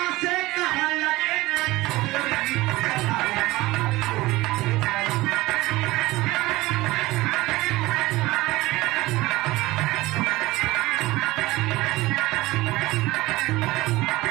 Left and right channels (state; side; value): quieter; left; 19.4 dB